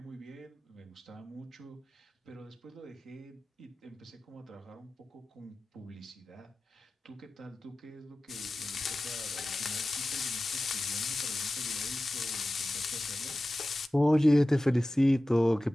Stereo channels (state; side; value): normal; both; correlation 0.95